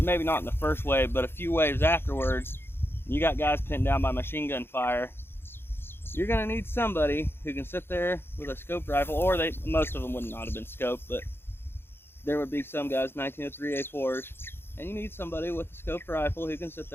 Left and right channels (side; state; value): right; late; 0.11 ms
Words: not in the first wave, but a few waves afterwards, you got guys pinned down by machine gun fire. You're going to need somebody who can sit there with a scoped rifle, or most of them would not have been scoped, but there would be some guys, 1903 A4s, and you need somebody with a scoped rifle who can sit